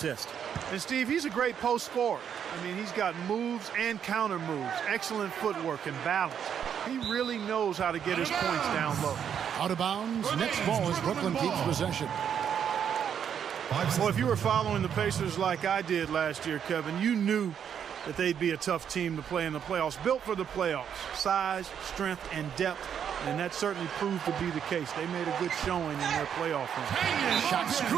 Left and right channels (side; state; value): left; quieter; 8.4 dB